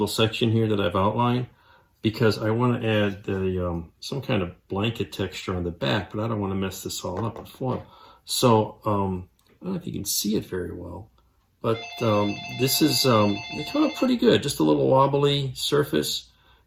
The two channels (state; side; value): identical; both; correlation 1.00